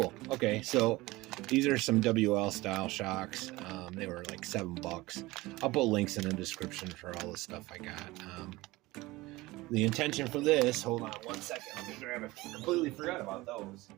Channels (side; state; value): left; quieter; 20.2 dB